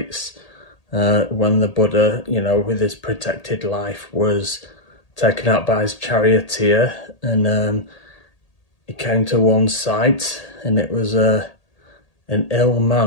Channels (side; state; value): right; late; 1.8 ms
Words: When the Buddha, with his protected life, was taken out by his charioteer, and he came to one sight, and it was an ill